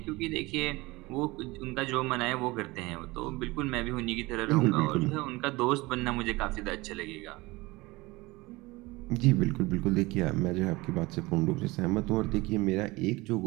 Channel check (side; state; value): left; quieter; 22.0 dB